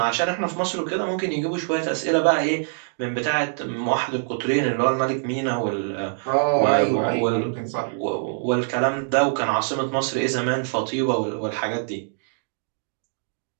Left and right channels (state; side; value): silent; left; digital silence